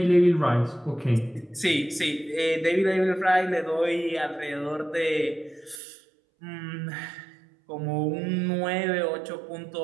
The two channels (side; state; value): left; drops out; at 5.8 s